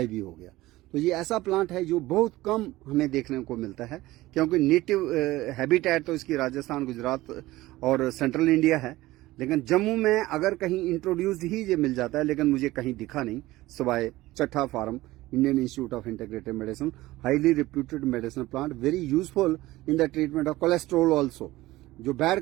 ही हो गया। तो ये ऐसा प्लांट है जो बहुत कम हमें देखने को मिलता है, क्योंकि नेटिव हैबिटेट तो इसकी राजस्थान, गुजरात और सेंट्रल इंडिया है। लेकिन जम्मू में अगर कहीं इंट्रोड्यूस्ड ही ये मिल जाता है, लेकिन मुझे कहीं दिखा नहीं, सिवाय Chatha farm, Indian Institute of Integrative Medicine, highly reputed medicinal plant, very useful in the treatment of cholesterol also. जो बैड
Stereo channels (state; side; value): quieter; left; 17.9 dB